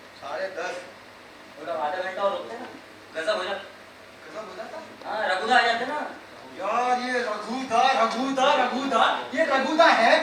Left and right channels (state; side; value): identical; both; correlation 1.00